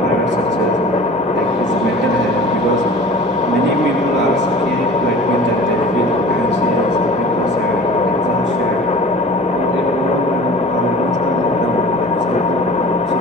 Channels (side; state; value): both; normal; correlation 0.41